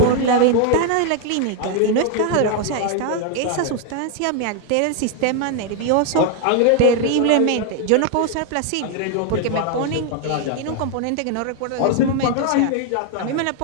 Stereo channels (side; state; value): both; different; correlation 0.01